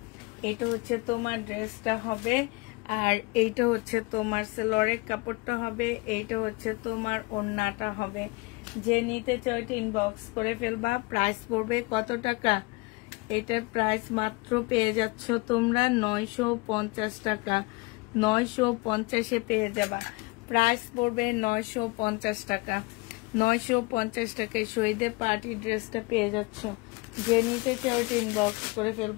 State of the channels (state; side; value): quieter; right; 25.0 dB